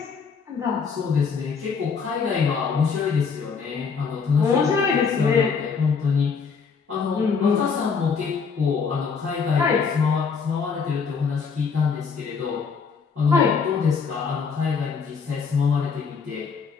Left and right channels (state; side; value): quieter; right; 5.6 dB